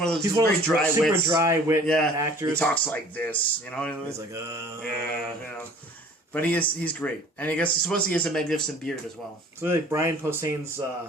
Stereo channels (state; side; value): normal; both; correlation 0.49